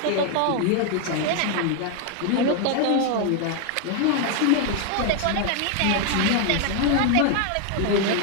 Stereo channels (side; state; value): both; different; correlation 0.01